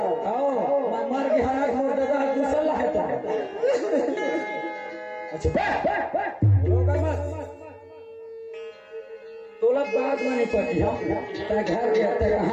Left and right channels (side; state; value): both; identical; correlation 1.00